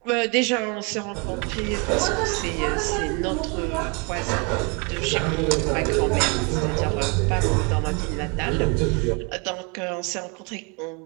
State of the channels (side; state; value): left; quieter; 32.2 dB